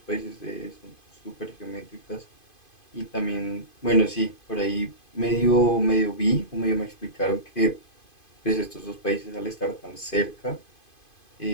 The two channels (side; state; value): right; late; 2.5 ms